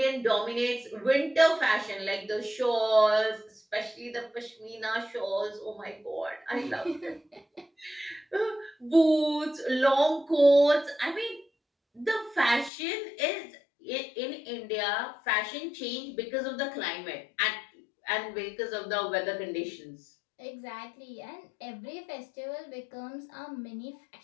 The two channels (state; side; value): drops out; right; at 12.7 s